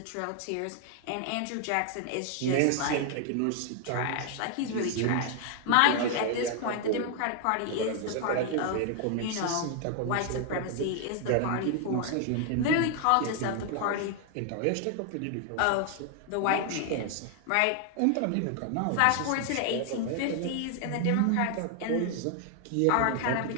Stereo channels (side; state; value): both; different; correlation 0.00